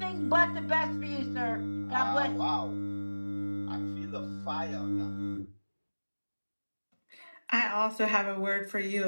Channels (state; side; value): inverted; both; correlation -1.00